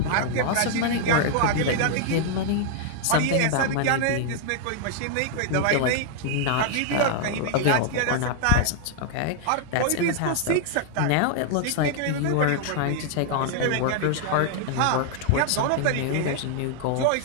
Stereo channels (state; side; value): different; both; correlation 0.00